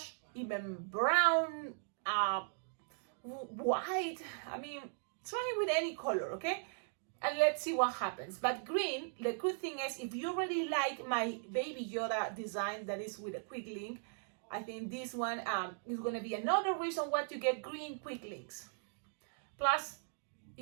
even brown, white, try with any color, okay? And let's see what happens. But green, the good thing is if you really like my Baby Yoda design that is with a quick link, I think this one is going to be another reason why to get green quick links. Plus,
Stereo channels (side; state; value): left; silent; digital silence